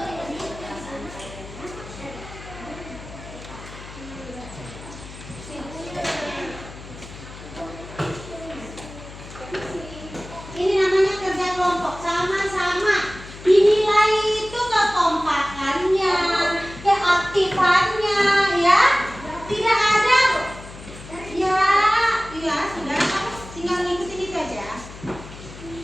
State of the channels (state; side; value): noise; left; hum, 15 dB below the sound